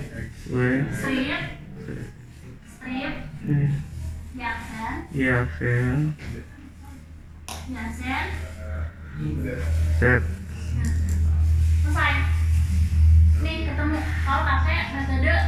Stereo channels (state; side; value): identical; both; correlation 1.00